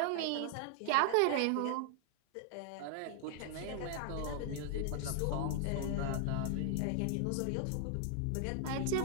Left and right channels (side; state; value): both; different; correlation 0.00